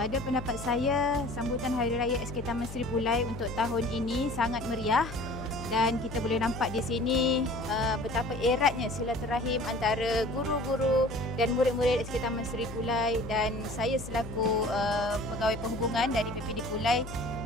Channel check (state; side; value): noise; left; hum, 12 dB below the sound